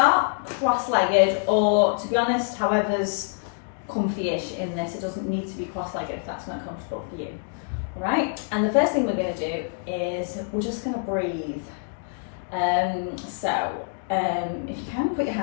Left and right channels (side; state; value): right; silent; 61 dB below the other